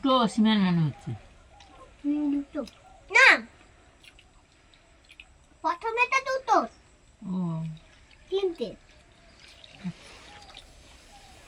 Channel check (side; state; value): both; identical; correlation 1.00